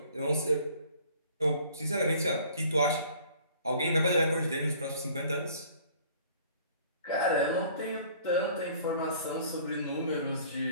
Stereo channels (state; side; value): inverted; both; correlation -0.53